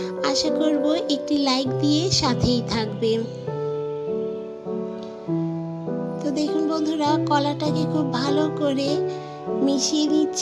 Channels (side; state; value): both; identical; correlation 1.00